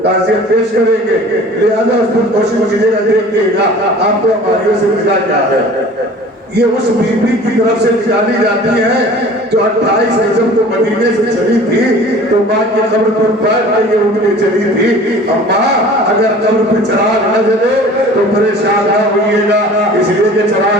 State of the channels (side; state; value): both; normal; correlation 0.45